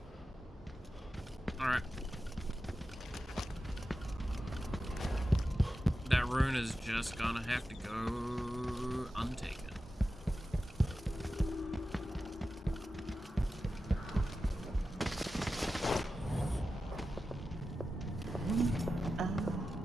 Alright. That rune is just gonna have to go untaken.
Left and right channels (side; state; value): both; normal; correlation 0.92